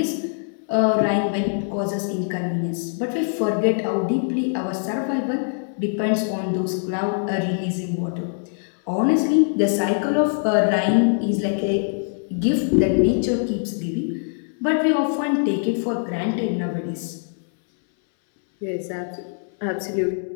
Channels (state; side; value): silent; right; 63 dB below the other